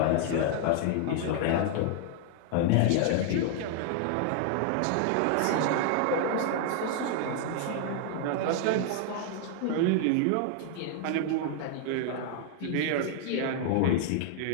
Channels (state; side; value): different; both; correlation 0.00